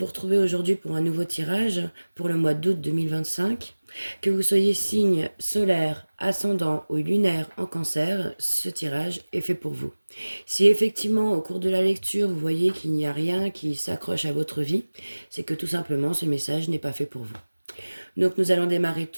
retrouver aujourd'hui pour un nouveau tirage pour le mois d'août 2025. Que vous soyez signe solaire, ascendant ou lunaire en cancer, ce tirage est fait pour vous. Si effectivement au cours de la lecture vous voyez qu'il n'y a rien qui s'accroche à votre vie, c'est que tout simplement ce message n'est pas fait pour vous. Donc nous allons démarrer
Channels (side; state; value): both; inverted; correlation -1.00